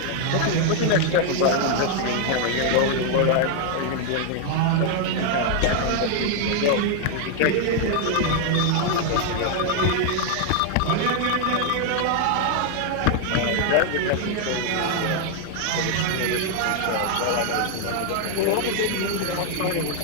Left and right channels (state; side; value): different; both; correlation 0.00